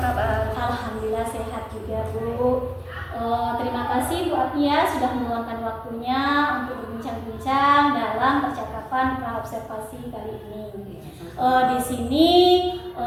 Alhamdulillah sehat juga Bu. Terima kasih Bu Apni ya sudah meluangkan waktunya untuk berbincang-bincang dalam percakapan praobservasi kali ini. Di sini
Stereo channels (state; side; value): identical; both; correlation 1.00